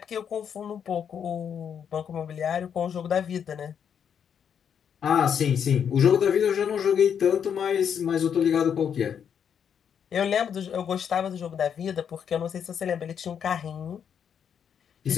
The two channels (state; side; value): quieter; right; 7.9 dB